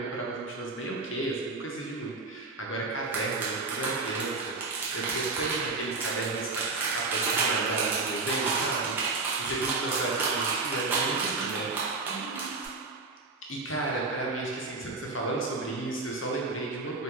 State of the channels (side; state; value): left; quieter; 3.6 dB